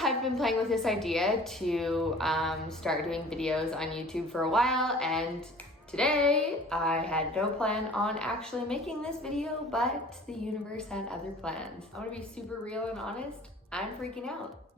been playing with this idea to start doing videos on YouTube for a while, and today I had no plan on actually making this video, but the universe had other plans. I want to be super real and honest. I'm freaking out.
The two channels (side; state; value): both; normal; correlation 0.47